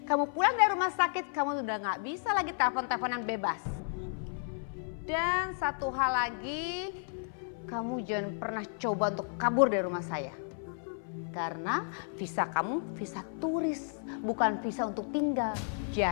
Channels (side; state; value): right; silent; 56 dB below the other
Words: kamu pulang dari rumah sakit, kamu udah nggak bisa lagi telepon-teleponan bebas. Dan satu hal lagi, kamu jangan pernah coba untuk kabur dari rumah saya. Karena visa kamu visa turis, bukan visa untuk tinggal.